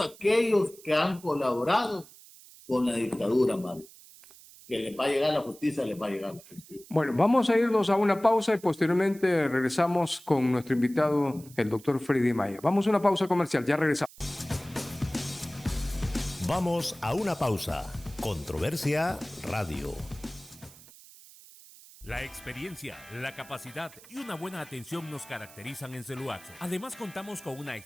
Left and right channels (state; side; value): noise; right; hiss, 21 dB below the sound